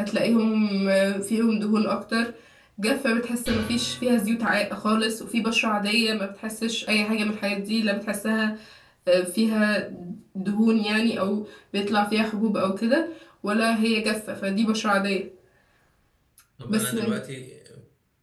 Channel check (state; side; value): identical; both; correlation 1.00